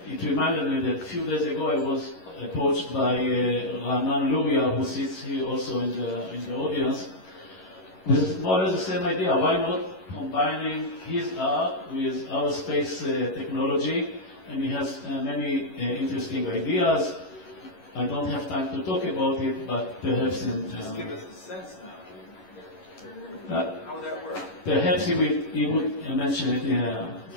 it reminded me that a few days ago I was approached by Ranan Luria, who sits here also in the audience, with more or less the same idea. Why not combining his art with our space technology? And he has many interesting ideas. I don't have time to talk about it, but perhaps in... Just give us a sense now. How would that work? Perhaps he would mention it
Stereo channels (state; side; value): late; right; 11 ms